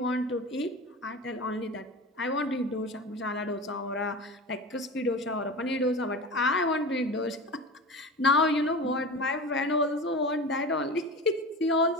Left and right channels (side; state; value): both; normal; correlation 0.31